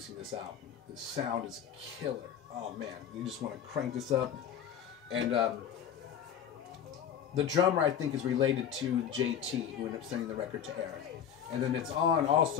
this album. The sound is killer. Oh man, you just want to crank this up. And the drummer, I think, is related to JT, who ended up sending the record to Eric. And then it's on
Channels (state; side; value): quieter; right; 8.7 dB